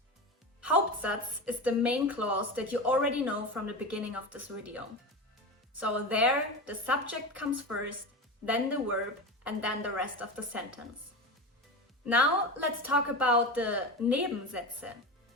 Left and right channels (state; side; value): normal; both; correlation 0.24